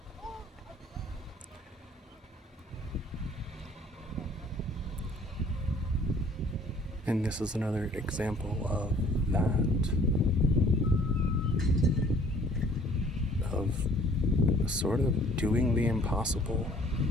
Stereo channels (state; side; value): normal; both; correlation 0.56